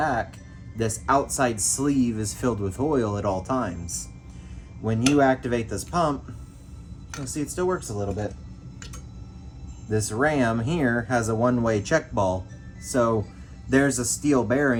This outside sleeve is filled with oil at all times. When you activate this pump, you'll see it still works a little bit. This ram here has a one-way check ball. So there's a steel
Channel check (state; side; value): identical; both; correlation 1.00